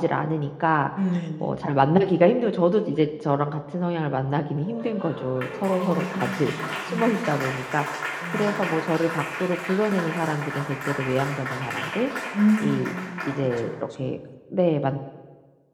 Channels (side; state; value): both; identical; correlation 1.00